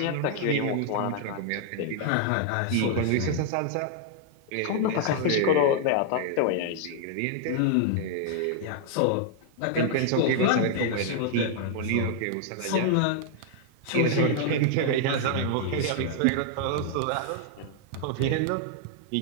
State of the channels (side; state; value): both; different; correlation 0.00